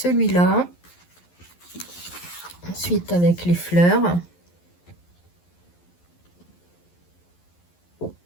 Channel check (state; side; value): late; right; 11 ms